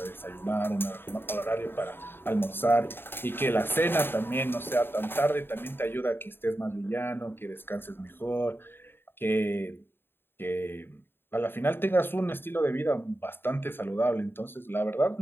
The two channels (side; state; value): right; late; 0.10 ms